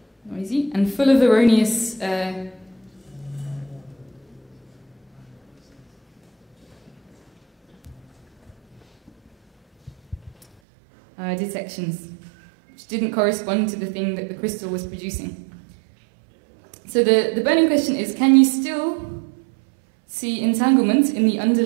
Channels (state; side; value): drops out; left; at 10.5 s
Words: Noisy and full of erroneous detections, which didn't correspond to the thing that the crystal was producing. So the burning question is, can you still see entanglement in the